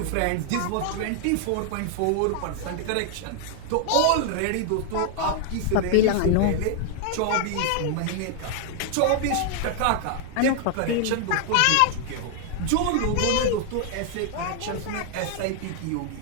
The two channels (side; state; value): both; different; correlation 0.00